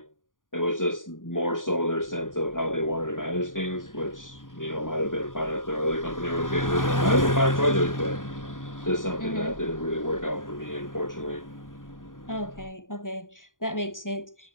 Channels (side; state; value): right; late; 0.89 ms